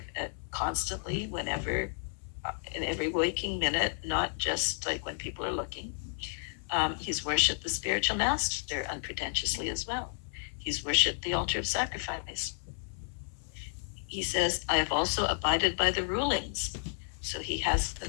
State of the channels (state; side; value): silent; right; 56 dB below the other